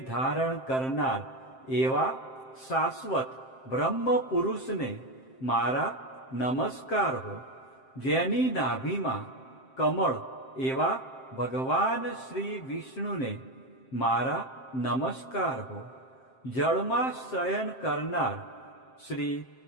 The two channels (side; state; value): right; late; 7.6 ms